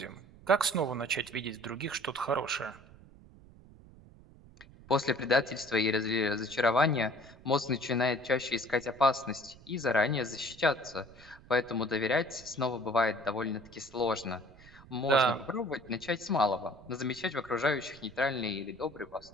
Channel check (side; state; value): right; noise; rumble, 22 dB below the sound